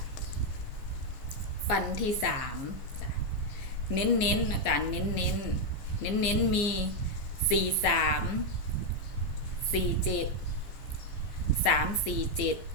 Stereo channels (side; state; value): right; late; 15 ms